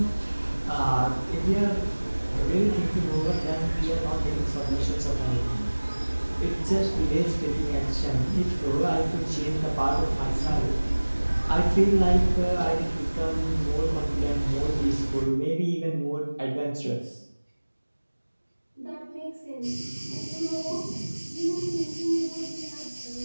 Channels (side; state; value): both; inverted; correlation -1.00